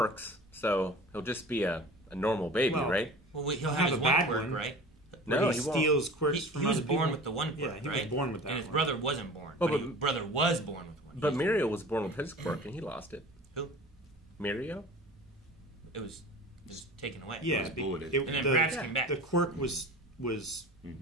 so he'll just be a normal baby, Well, right? Well, he'll Have have his a one bad quirk, one. right? No, he he won't. steals quirks from He was other born people. with the one quirk, Yeah, he right? was born with that And his one. brother wasn't born. Oh, but but- his brother was born with one. But Mirio was born with his quirk and he lost it. Who? Mirio? It was just taken away. Yeah, was bulleted. And then Bratz came back. the quirk was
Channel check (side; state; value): both; normal; correlation 0.39